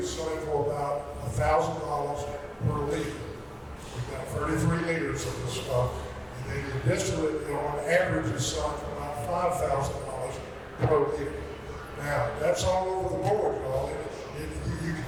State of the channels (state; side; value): identical; both; correlation 1.00